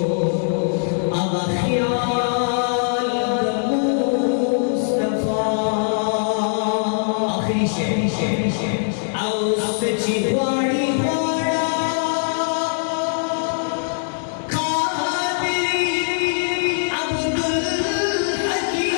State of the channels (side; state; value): right; silent; digital silence